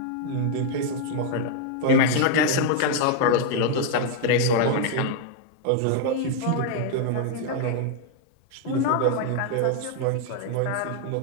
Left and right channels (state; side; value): different; both; correlation 0.00